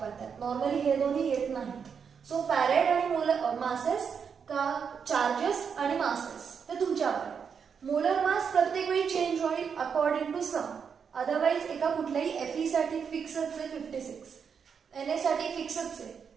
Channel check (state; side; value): quieter; left; 6.7 dB